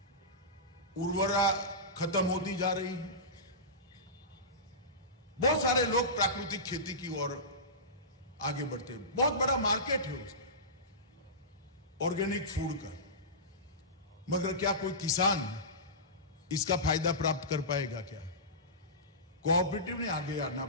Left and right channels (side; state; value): both; normal; correlation -0.20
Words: उर्वरा खत्म होती जा रही है। बहुत सारे लोग प्राकृतिक खेती की ओर आगे बढ़ते हैं, बहुत बड़ा मार्केट है उसका, ऑर्गेनिक फूड का। मगर क्या कोई किसान इसका फायदा प्राप्त कर पाएगा क्या? कोऑपरेटिव ने आगे आना